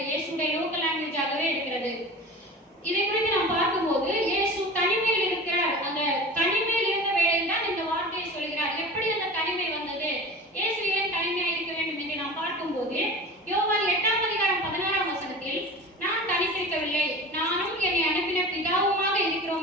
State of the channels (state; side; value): normal; both; correlation 0.35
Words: இயேசுடைய லோக்கல் லாங்குவேஜாகவே இருக்கிறது. இதை குறித்து நாம் பார்க்கும்போது இயேசு தனிமையில் இருக்கிறார். அந்த தனிமையில் இருந்த வேளையில் தான் இந்த வார்த்தையை சொல்கிறார். எப்படி அந்த தனிமை வந்தது, இயேசு ஏன் தனிமையாக இருக்க வேண்டும் என்று நாம் பார்க்கும்போது யோவான் 8:16 நான் தனித்திருக்கவில்லை, நானும் என்னை அனுப்பின பிதாவுமாக